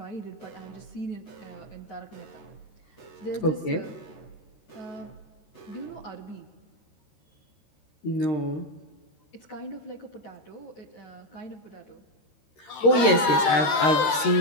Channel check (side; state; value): right; late; 13 ms